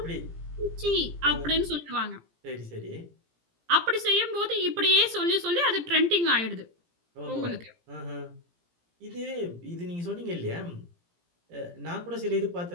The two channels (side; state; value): left; late; 17 ms